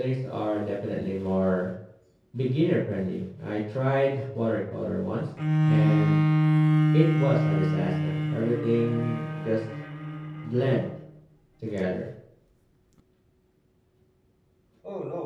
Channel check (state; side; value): identical; both; correlation 1.00